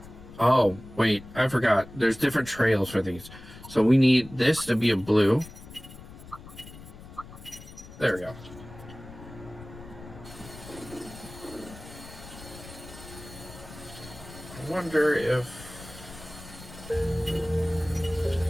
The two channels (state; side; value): noise; left; rumble, 16 dB below the sound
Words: Oh, wait, I forgot. There's different trails for these. So we need this to be a blue. There we go. I wonder if